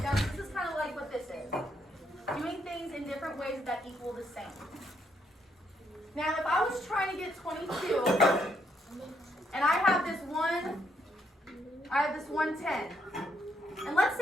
down. This is kind of like what this is. Doing things in different ways that equal the same. Now, if I was trying to get 22, and I have this 110, and let's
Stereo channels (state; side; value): normal; both; correlation 0.74